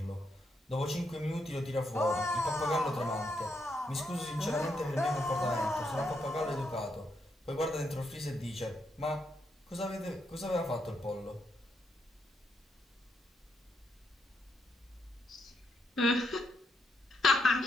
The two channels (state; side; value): normal; both; correlation 0.80